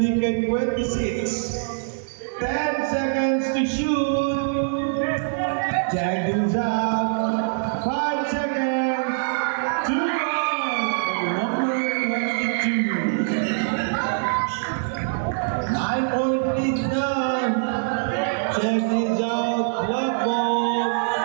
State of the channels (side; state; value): left; silent; digital silence